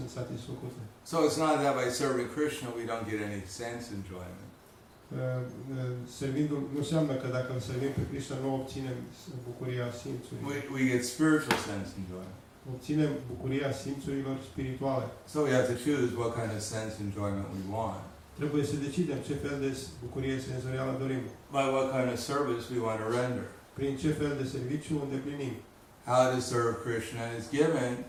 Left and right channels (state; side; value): identical; both; correlation 1.00